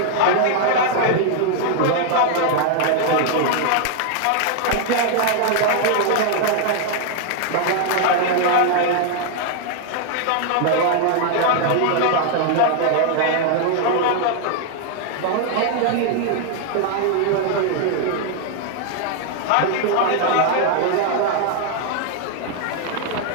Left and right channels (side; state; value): both; different; correlation 0.00